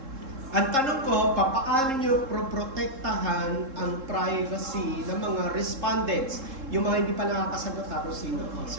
Ang tanong ko, paano nyo protektahan ang privacy ng mga respondents? Yung mga hindi pa nakakasagot, tapos sino?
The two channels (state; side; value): late; left; 3.7 ms